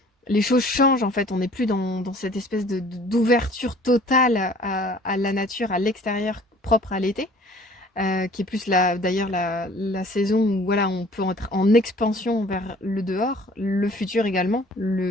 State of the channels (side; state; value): both; normal; correlation 0.52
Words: changent en fait. On n'est plus dans cette espèce d'ouverture totale à la nature, à l'extérieur, propre à l'été, qui est plus d'ailleurs la saison où voilà, on peut être en expansion vers le dehors, le futur également,